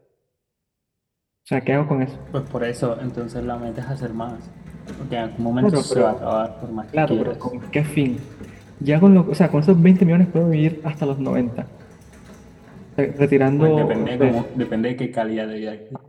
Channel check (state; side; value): identical; both; correlation 1.00